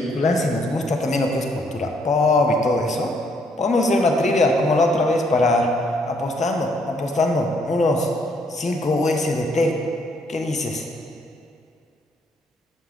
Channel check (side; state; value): both; normal; correlation 0.69